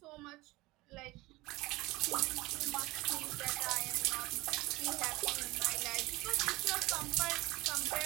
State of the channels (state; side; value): quieter; left; 20.8 dB